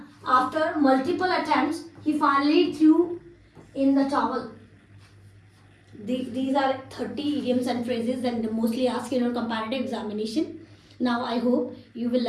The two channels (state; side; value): identical; both; correlation 1.00